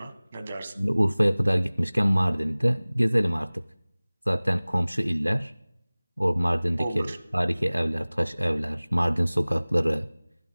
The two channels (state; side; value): inverted; both; correlation -1.00